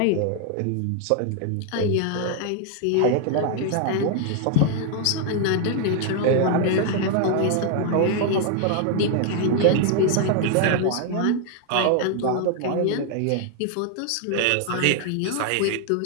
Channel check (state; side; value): different; both; correlation 0.00